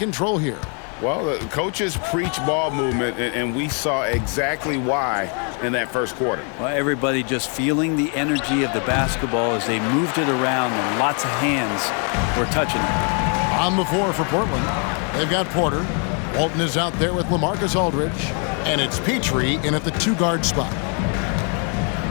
here. Well, the coaches preach ball movement, and we saw exactly why in that first quarter. Well, everybody just feeling the energy of the basketball as they moved it around, and lots of hands were touching it. On the floor for Portland, they've got Porter. Walton is out there with LaMarcus Aldridge, and it's Petrie in at the 2-guard spot.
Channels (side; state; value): right; quieter; 39.1 dB